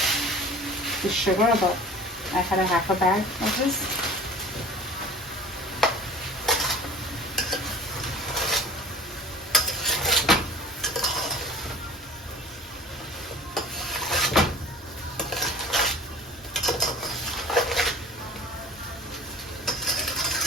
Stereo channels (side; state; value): both; normal; correlation 0.43